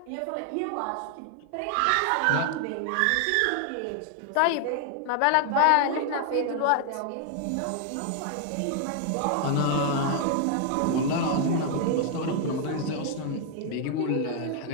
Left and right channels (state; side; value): different; both; correlation 0.00